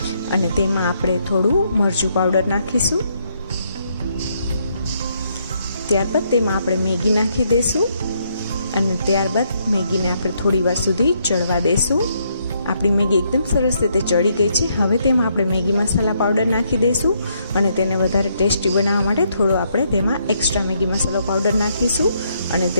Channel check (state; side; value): inverted; both; correlation -0.74